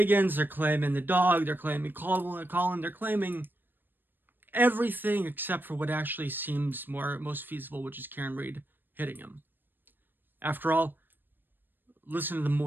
they're claiming the dog, they're claiming Colin, they're claiming everything except for what actually seems most feasible, which is Karen Read hitting him. After all, listen to the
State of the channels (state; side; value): late; left; 0.094 ms